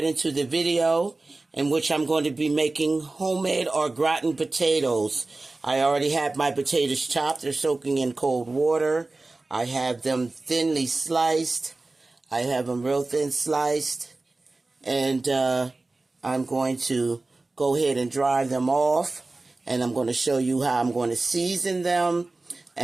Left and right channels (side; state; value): left; quieter; 3.3 dB